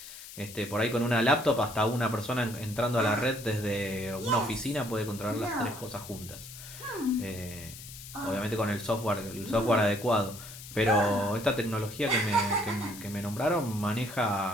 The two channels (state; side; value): noise; left; hiss, 14 dB below the sound